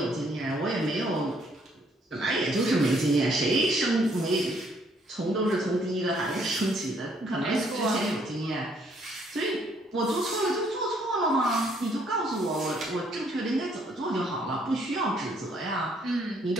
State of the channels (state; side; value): normal; both; correlation 0.67